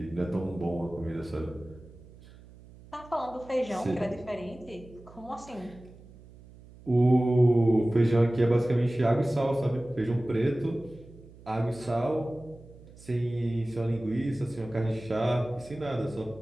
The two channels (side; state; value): right; noise; hum, 21 dB below the sound